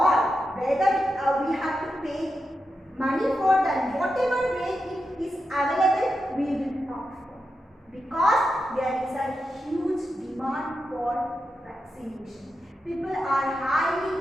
whether we have to pay money for that, whatever way it is available, we will opt for. Because there is a huge demand for vaccination. People are highly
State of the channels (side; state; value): both; normal; correlation 0.88